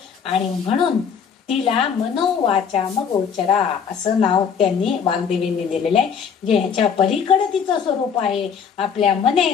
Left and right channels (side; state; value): right; quieter; 6.9 dB